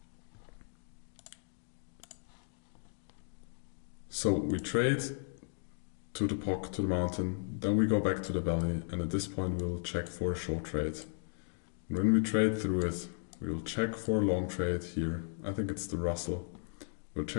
So we trade to the POC, to the mountain, then we go back to the valley, and at this point we will check for a short trade. And when we trade through it, we will check for a long trade here. I think it's the Russell. We'll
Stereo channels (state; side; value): silent; right; digital silence